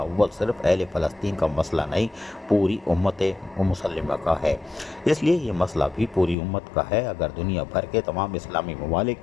صرف اہل فلسطین کا مسئلہ نہیں، پوری امت مسلمہ کا ہے۔ اس لیے یہ مسئلہ بھی پوری امت کا ہے۔ اگر دنیا بھر کے تمام اسلامی ممالک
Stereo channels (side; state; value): right; drops out; at 6.4 s